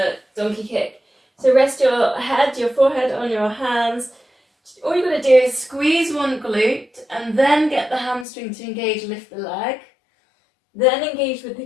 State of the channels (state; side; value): drops out; right; at 8.2 s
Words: donkey kick. So rest your head, your forehead on your hands. All you've got to do is squeeze one glute and then get the hamstring to engage, lift the leg. Then engage with